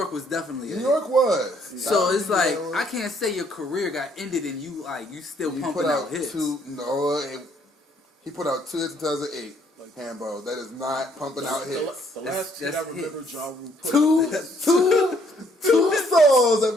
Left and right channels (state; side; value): normal; both; correlation 0.66